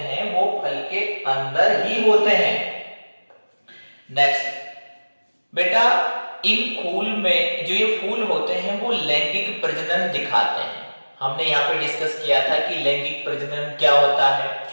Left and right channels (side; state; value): both; inverted; correlation -1.00